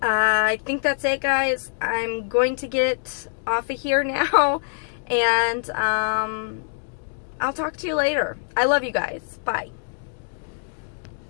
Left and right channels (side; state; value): right; silent; digital silence